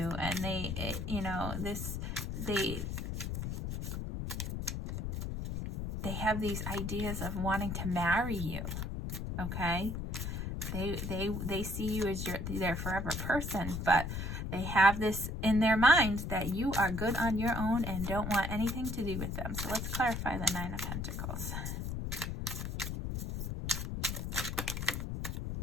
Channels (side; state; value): left; noise; rumble, 4 dB below the sound